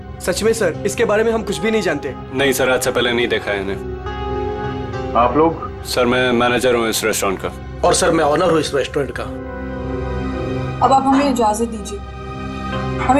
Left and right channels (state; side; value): identical; both; correlation 1.00